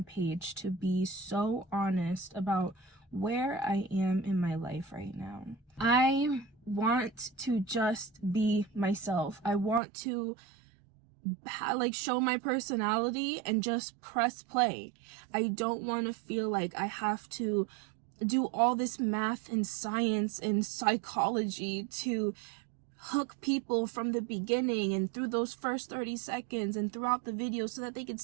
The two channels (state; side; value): drops out; left; at 9.8 s